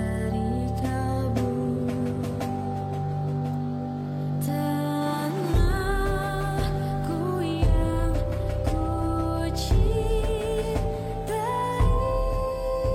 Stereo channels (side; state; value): both; identical; correlation 1.00